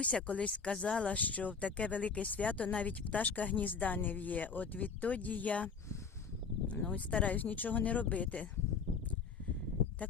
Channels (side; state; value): right; quieter; 5.5 dB